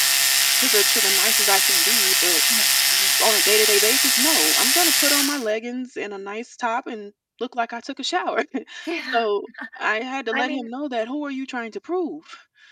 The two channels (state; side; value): identical; both; correlation 1.00